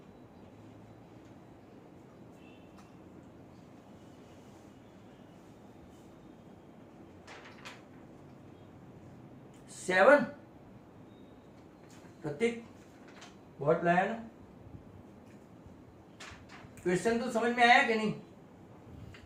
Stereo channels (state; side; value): identical; both; correlation 1.00